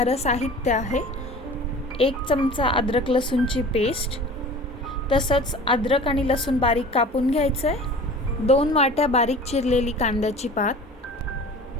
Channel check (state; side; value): normal; both; correlation 0.41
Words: साहित्य आहे 1 चमचा अद्रक लसूणची पेस्ट, तसंच अद्रक आणि लसूण बारीक कापून घ्यायचं आहे. 2 वाट्या बारीक चिरलेली कांद्याची पात,